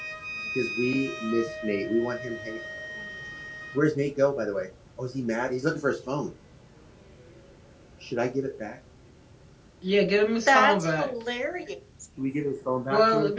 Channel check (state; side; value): identical; both; correlation 1.00